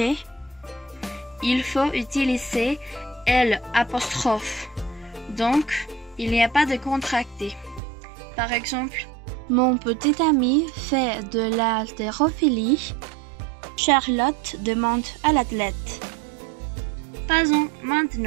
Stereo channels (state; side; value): drops out; left; at 7.8 s